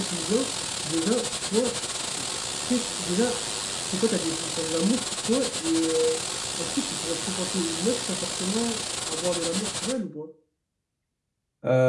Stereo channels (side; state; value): both; identical; correlation 1.00